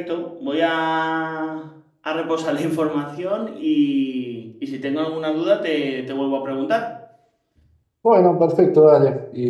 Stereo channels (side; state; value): both; identical; correlation 1.00